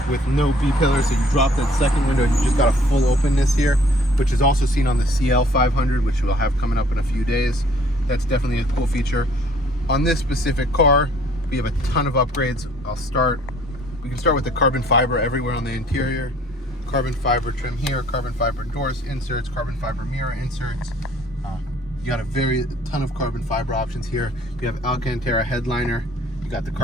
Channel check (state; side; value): normal; both; correlation 0.58